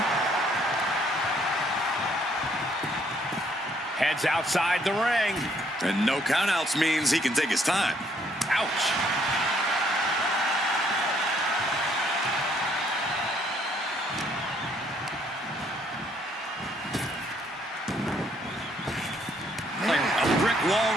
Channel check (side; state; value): both; normal; correlation 0.67